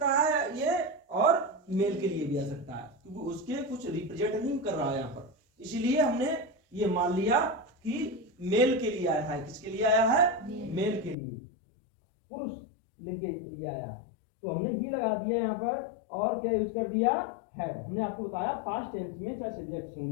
है ये और मेल के लिए भी आ सकता है, क्योंकि उसके कुछ रिप्रेजेंट नहीं कर रहा है यहाँ पर, इसीलिए हमने ये मान लिया कि मेल के लिए आया है। किसके लिए आया है? मेल के लिए, पुरुष लिंग के लिए आया है। तो हमने ही लगा दिया यहाँ पर, और क्या यूज कर दिया? हैड। हमने आपको बताया पास्ट टेंस में चाहे सब्जेक्ट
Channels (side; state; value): right; drops out; at 11.2 s